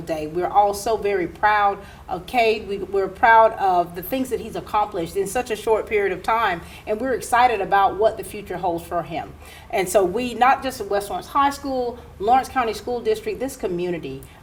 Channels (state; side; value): identical; both; correlation 1.00